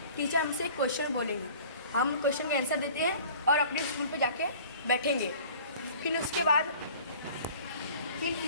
टीचर हमसे एक क्वेश्चन बोलेंगे, हम क्वेश्चन का आंसर देते हैं और अपने स्टूल पे जाके बैठेंगे। फिर उसके बाद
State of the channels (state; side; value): inverted; both; correlation -0.46